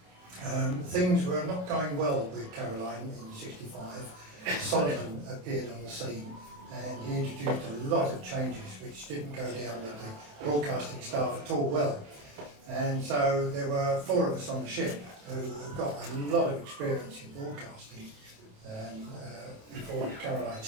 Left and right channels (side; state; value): left; late; 27 ms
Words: Things were not going well with Caroline in '65. Solomon appeared on the scene. And he introduced a lot of changes which didn't go down with the broadcasting staff at all well. And so there were 4 of us on the ship who got a lot of experience in broadcasting before Caroline